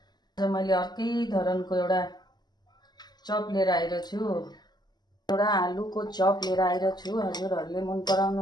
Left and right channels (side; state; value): right; late; 0.20 ms